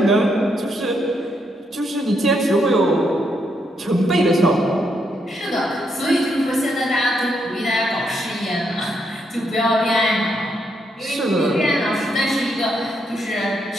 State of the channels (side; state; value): both; normal; correlation 0.78